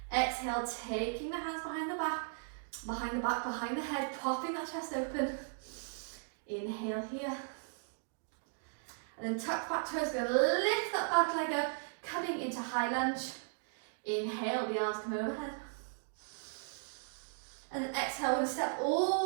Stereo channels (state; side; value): silent; left; digital silence